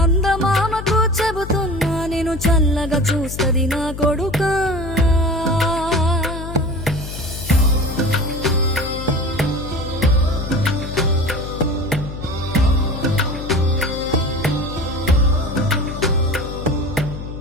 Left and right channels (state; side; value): noise; left; hum, 9 dB below the sound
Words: చెబుతున్నా నేను చల్లగా చూస్తది నా కొడుకా.